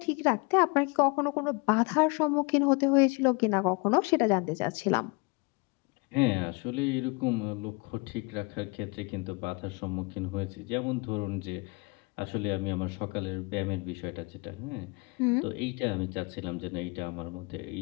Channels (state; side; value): quieter; right; 28.6 dB